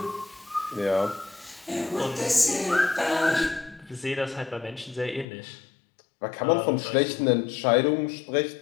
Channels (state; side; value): drops out; right; at 5.2 s